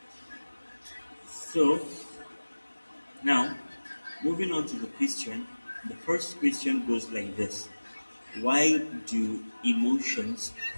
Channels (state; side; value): inverted; both; correlation -1.00